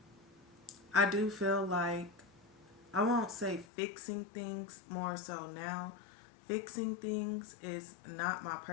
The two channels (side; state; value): right; drops out; at 3.7 s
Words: I do feel like, I won't say fixing things more so now. Fixing things is not my